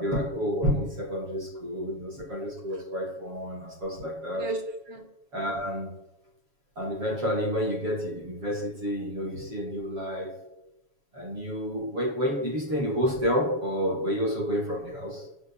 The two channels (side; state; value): left; late; 7.1 ms